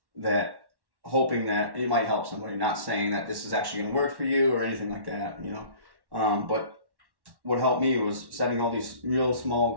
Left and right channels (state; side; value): late; left; 1.1 ms